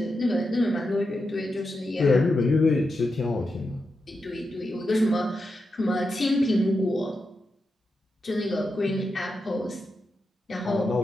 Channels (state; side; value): normal; both; correlation 0.88